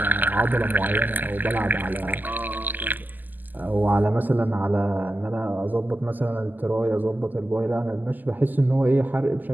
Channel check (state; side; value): late; left; 0.086 ms